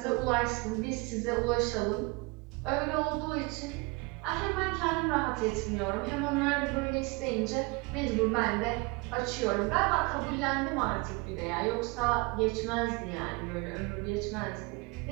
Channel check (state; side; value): quieter; left; 26.4 dB